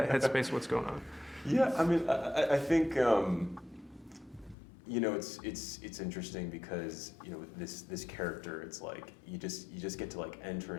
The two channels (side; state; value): right; drops out; at 4.5 s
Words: headspace? What's going on? Yeah, I mean, I think it's interesting because this character, it's like you just get to like enter